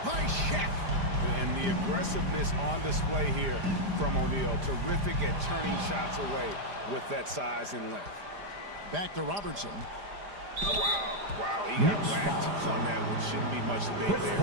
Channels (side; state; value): left; late; 5.0 ms